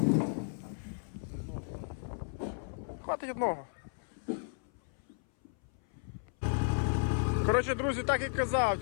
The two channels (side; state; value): right; silent; 55 dB below the other